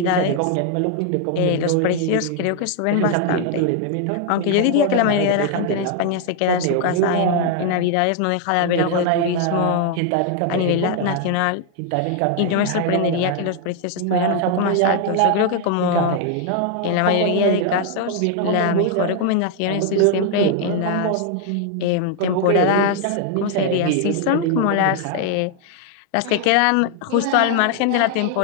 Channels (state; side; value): different; both; correlation 0.00